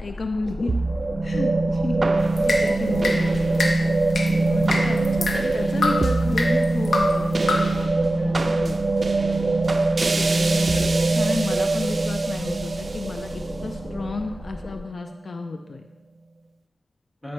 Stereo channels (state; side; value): normal; both; correlation 0.94